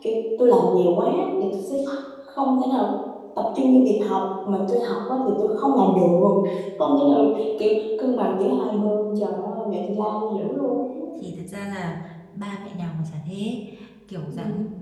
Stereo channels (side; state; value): both; identical; correlation 1.00